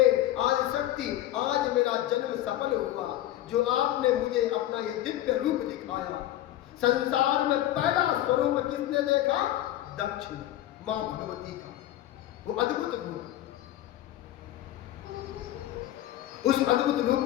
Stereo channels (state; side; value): quieter; right; 13.7 dB